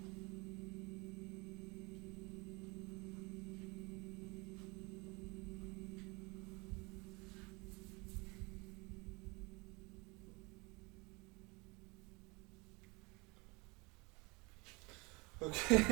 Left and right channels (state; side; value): quieter; left; 26.9 dB